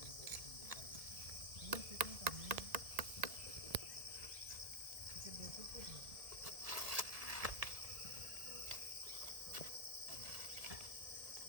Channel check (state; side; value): late; left; 1.7 ms